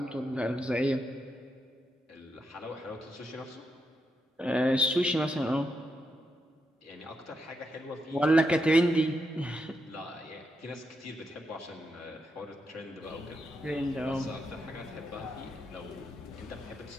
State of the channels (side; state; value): both; normal; correlation 0.83